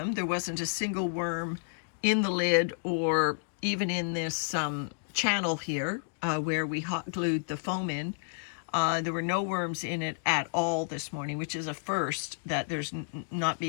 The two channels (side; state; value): right; silent; digital silence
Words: there wasn't a single worm in the lid or even in this channel here where we hot glued the foam in. There were no worms in it at all this morning, which is a first, that there's not